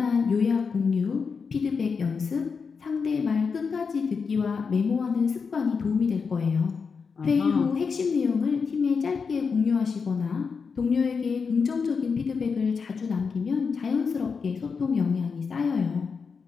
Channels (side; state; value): right; quieter; 5.4 dB